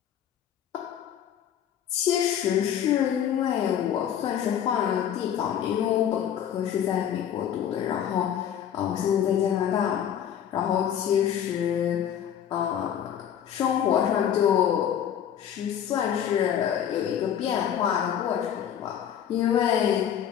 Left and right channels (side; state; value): right; quieter; 9.5 dB